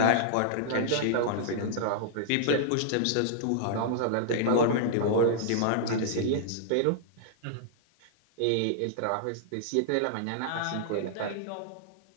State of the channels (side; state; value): both; different; correlation -0.01